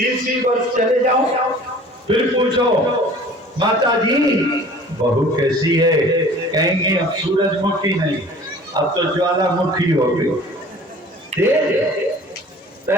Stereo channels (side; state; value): both; normal; correlation 0.47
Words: वर्ष चले जाओ फिर पूछो माताजी बहू कैसी है, कहेंगे अब सूरजमुखी नहीं, अब तो ज्वालामुखी हो गई।